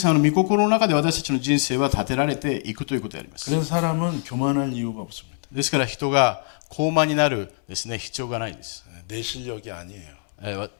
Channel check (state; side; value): silent; right; 56 dB below the other